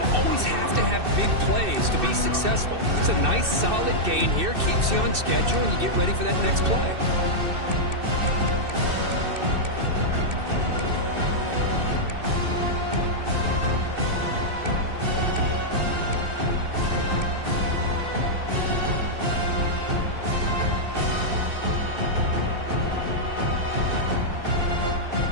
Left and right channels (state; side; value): late; left; 2.6 ms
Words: always have to have big plays to be successful. It's a nice, solid gain here, keeps you on schedule, and you get ready for that next play.